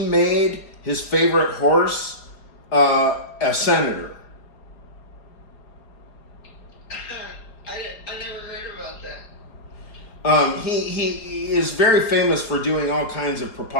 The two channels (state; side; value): late; right; 4.8 ms